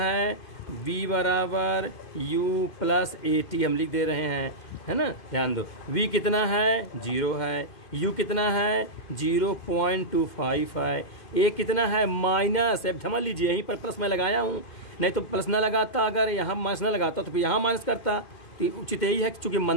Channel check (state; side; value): late; right; 2.1 ms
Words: v बराबर u प्लस at हम लिख दे रहे हैं, है ना, ध्यान दो। v कितना है 0 है, u कितना है 0.25 है, a कितना है माइनस, अब समझ लीजिए यहीं पर प्लस मैं लगाया हूँ, नहीं तो प्लस ना लगाता, अगर यहाँ माइनस ना लगाता तो फिर यहाँ माइनस करता, तो उचित यही है कि चूंकि